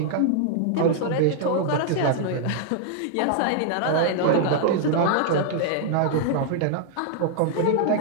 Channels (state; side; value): different; both; correlation -0.01